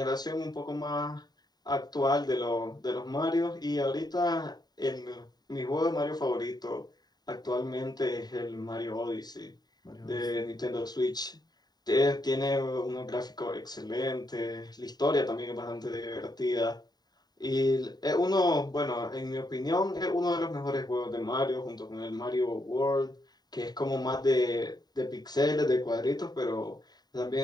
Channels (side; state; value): right; late; 0.20 ms